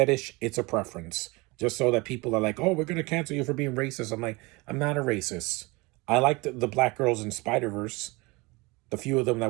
it's a preference. Just so that people are like, oh, we're going to cancel you for being racist. I'm like, I'm not a racist. I liked the black girls in Spider-Verse, the few of them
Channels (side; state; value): left; quieter; 24.9 dB